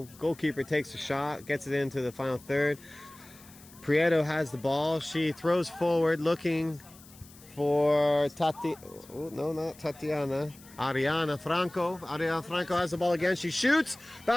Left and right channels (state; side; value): noise; left; hiss, 22 dB below the sound